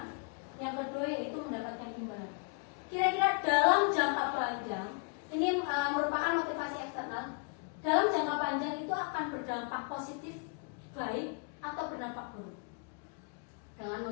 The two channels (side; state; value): right; quieter; 39.3 dB